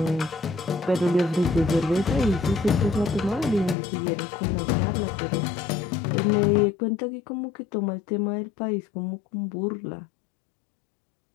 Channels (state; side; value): drops out; right; at 3.8 s